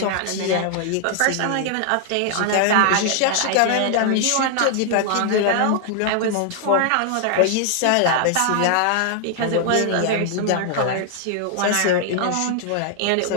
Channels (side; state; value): both; different; correlation 0.00